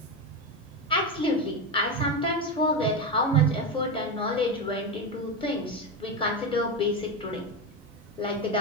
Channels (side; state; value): both; normal; correlation 0.14